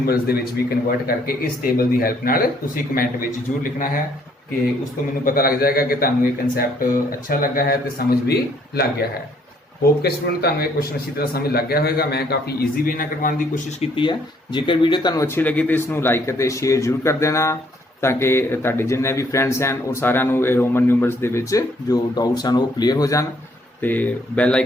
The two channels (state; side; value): normal; both; correlation 0.66